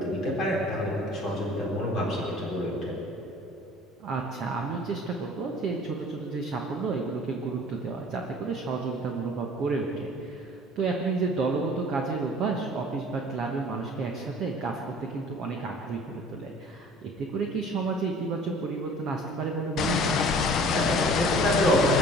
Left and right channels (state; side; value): normal; both; correlation 0.49